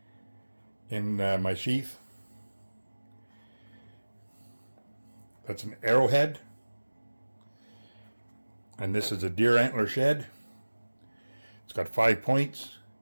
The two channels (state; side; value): inverted; both; correlation -1.00